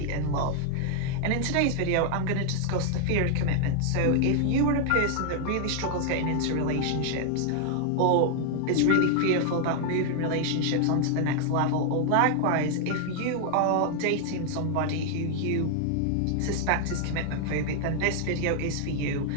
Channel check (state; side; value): different; both; correlation 0.00